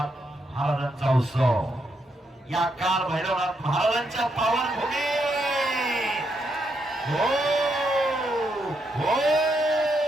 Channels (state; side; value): normal; both; correlation 0.79